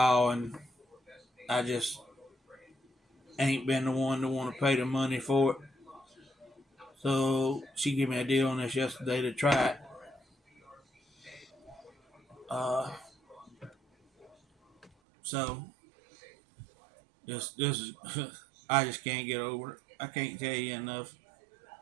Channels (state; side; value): drops out; left; at 14.9 s